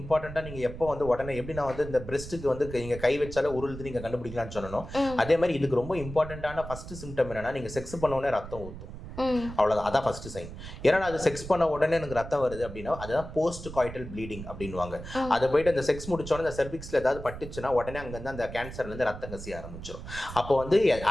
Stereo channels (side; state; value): right; noise; rumble, 11 dB below the sound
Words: நீங்கள் எப்போ வந்து உடனே எப்படி நான் வந்து இந்த பிரெஸ்ட்டுக்கு வந்து நீங்கள் கை வச்சாலே உருளுது நீங்கள் கண்டுபிடிக்கலாம்னு சொன்னோம், அதே மாதிரி இதுக்கு ரொம்ப இம்பார்ட்டண்ட்டான ஃபஸ்ட்டு சிம்டம் என்னன்னா, நீங்கள் செக்ஸ் பண்ண உடனே ரத்தம் ஊற்றும், அவ்வளோதான், அதான் ஃபஸ்ட்டு சைன். ஏன்னா அது செக்ஸ் பண்ண உடனே எனக்கு ரத்தம் வருது அப்படின்னா அதுதான் போஸ்ட் காய்டல் ப்ளீடிங் அப்படின்வாங்க. அதை போயிட்டு அந்த செக்ஸ் முடிச்சோடனே இந்த செர்விக்ஸில் ஏதாவது பட்டுச்சுன்னா உடனே அங்கேருந்து அந்த கேன்சர்லேருந்து ரத்தம் கசிய ஆரம்பிச்சிடும். அப்போ வந்து